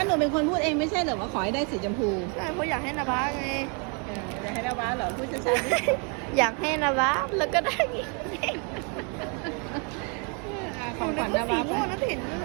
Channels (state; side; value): quieter; left; 35.8 dB